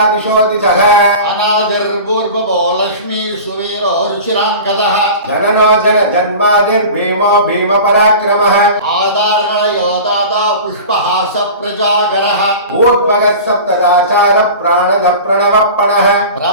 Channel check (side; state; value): both; inverted; correlation -0.35